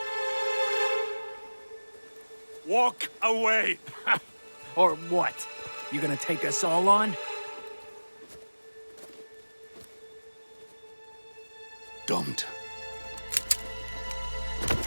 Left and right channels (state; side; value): inverted; both; correlation -1.00